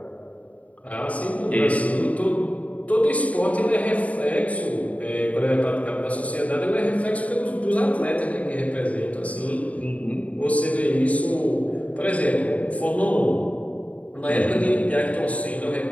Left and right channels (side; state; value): right; late; 0.068 ms